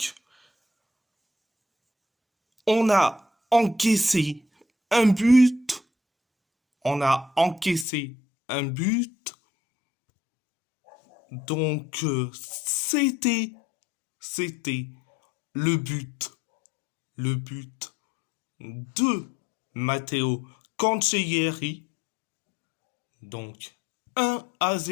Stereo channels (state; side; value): drops out; right; at 7.9 s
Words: On a encaissé un but. On a encaissé un but. Donc, c'était le but de Matteo Cancellieri. Donc,